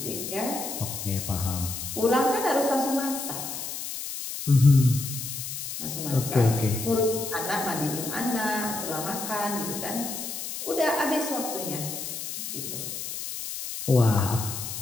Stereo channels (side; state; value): left; noise; hiss, 6 dB below the sound